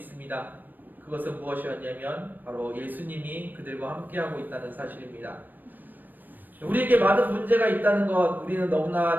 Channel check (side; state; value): left; late; 0.090 ms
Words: 그것은 무엇이었냐면 바로 예수님이 그들과 함께하고 있다는 사실입니다. 우리에게 많은 문제가 있다는 것 우리는